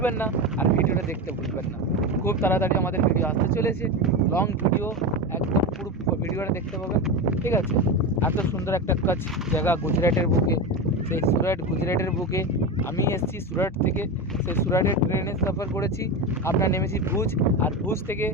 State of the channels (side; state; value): both; normal; correlation 0.20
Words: না, আর ভিডিওটা দেখতে ভুলবেন না। খুব তাড়াতাড়ি আমাদের ভিডিও আসতে চলেছে, লং ভিডিও, একদম পুরো ভিডিওটা দেখতে পাবেন, ঠিক আছে? এত সুন্দর একটা কাজ জায়গা গুজরাটের বুকে, সেই গুজরাটের বুকে আমি এসেছি সুরাট থেকে। সেই সুরাটের ট্রেনে সফর করেছি, আমরা নেমেছি ভুজ, আর ভুজ থেকে